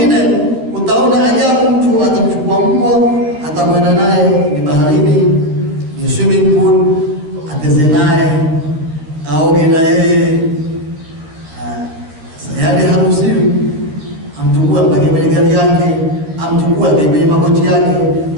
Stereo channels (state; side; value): late; left; 13 ms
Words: utaona ajabu, mtu atamchukua mbwa atakwenda naye ni baharini, ni swimming pool, ateze naye, aoge na yeye. Yaani haruhusiwi amtukue mpaka kwenye gari yake, amtukue kwenye magoti yake,